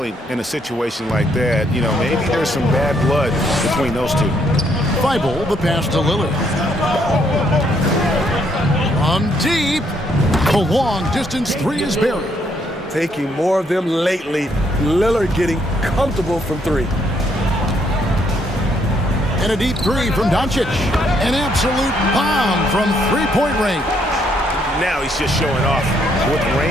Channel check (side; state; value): both; normal; correlation 0.71